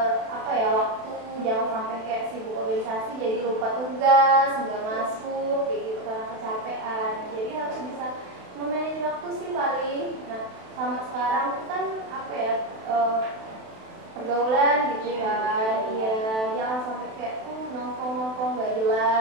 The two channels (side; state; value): left; late; 32 ms